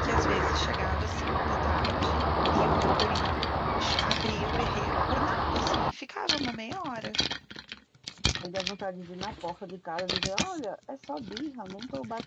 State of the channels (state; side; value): identical; both; correlation 1.00